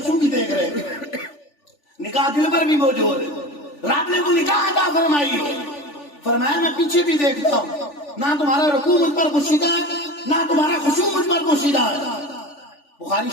بھی دیکھ رہے ہیں. نگاہ دل پر بھی موجود ہے. رب نے وہ نگاہ عطا فرمائی ہے. فرمایا میں پیچھے بھی دیکھتا ہوں، نہ تمہارا رکوع مجھ پر پوشیدہ ہے نہ تمہارا خشوع مجھ پر پوشیدہ ہے. بخاری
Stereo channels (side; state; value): right; late; 3.4 ms